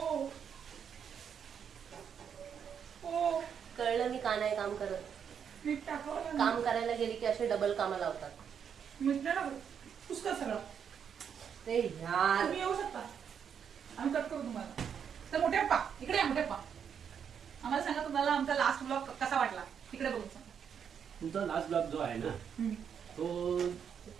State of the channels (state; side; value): quieter; left; 7.7 dB